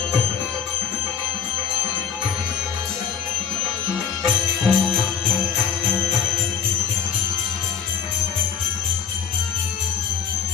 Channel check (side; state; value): right; quieter; 7.4 dB